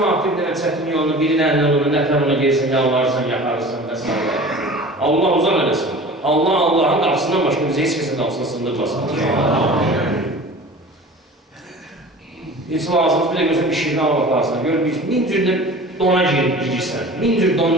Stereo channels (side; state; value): both; normal; correlation 0.40